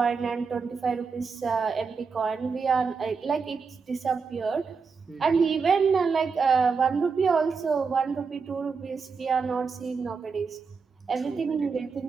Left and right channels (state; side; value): quieter; left; 5.2 dB